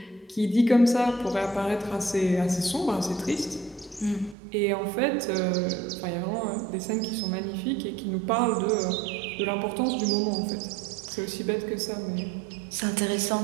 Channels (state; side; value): drops out; left; at 4.4 s